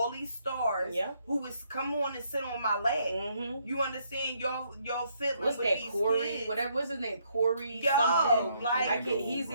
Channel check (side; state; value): both; inverted; correlation -0.72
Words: these stars Yeah. who is come on and sit on my lap. Mm-hmm. You understand? Y'all fiddling What's with that? these Corey? kids. Whatever. What's his name? Corey. Yo, something. like, I can't, he's So